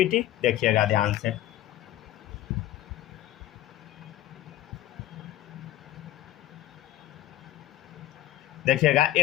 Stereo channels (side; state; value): right; quieter; 14.1 dB